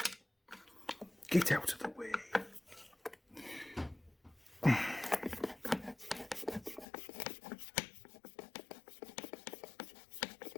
Get out of the way.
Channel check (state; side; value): drops out; right; at 6.9 s